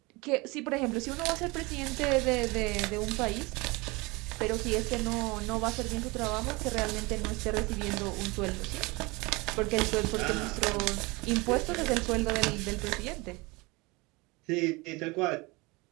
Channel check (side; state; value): left; quieter; 24.8 dB